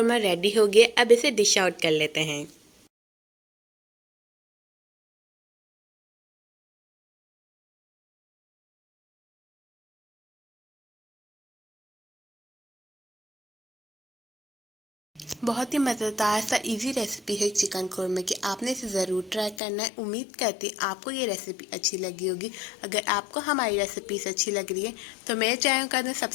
रेडी हो गया। अब इसे डिश आउट कर लेते हैं। बहुत ही मज़ेदार सा इजी रेसिपी है चिकन कोरमा की। आपने इसे ज़रूर ट्राई करना है। उम्मीद करती हूँ आपको ये रेसिपी अच्छी लगी होगी। अगर आपको हमारी रेसिपीज अच्छी लग रही है तो मेरे चैनल कर दें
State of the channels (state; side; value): drops out; right; at 19.6 s